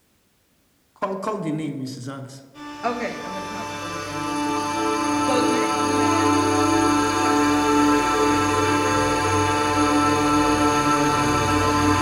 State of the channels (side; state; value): both; identical; correlation 1.00